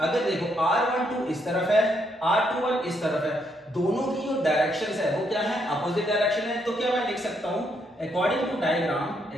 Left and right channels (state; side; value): normal; both; correlation 0.75